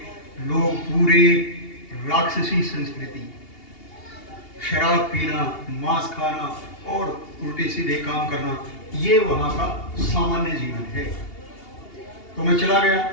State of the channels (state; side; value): late; right; 2.8 ms